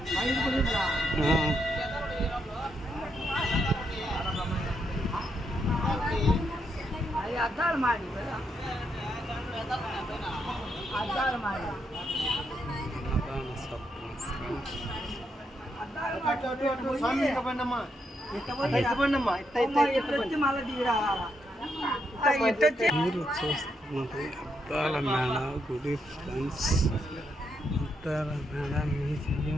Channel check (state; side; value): normal; both; correlation 0.79